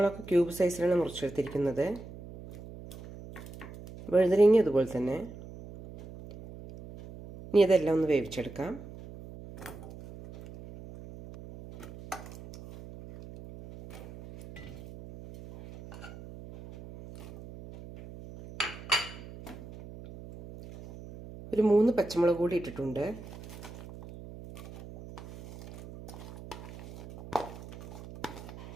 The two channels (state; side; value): noise; right; hum, 15 dB below the sound